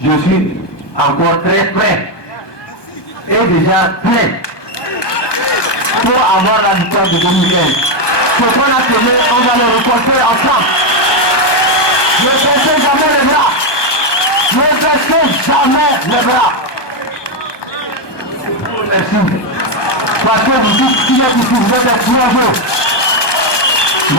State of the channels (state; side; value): late; right; 1.2 ms